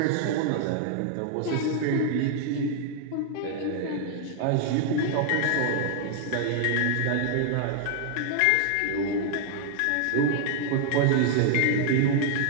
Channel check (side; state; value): both; different; correlation 0.00